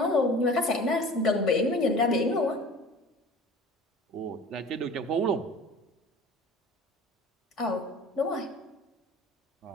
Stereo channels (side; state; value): both; normal; correlation 0.42